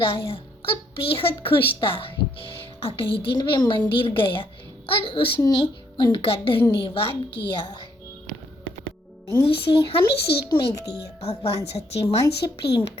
और बेहद खुश था। अगले दिन वे मंदिर गया और उसने उनका धन्यवाद किया। से हमें सीख मिलती है, भगवान सच्चे मन से प्रेम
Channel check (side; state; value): both; normal; correlation 0.71